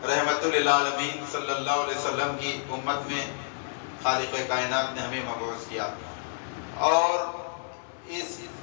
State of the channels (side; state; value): right; silent; 55 dB below the other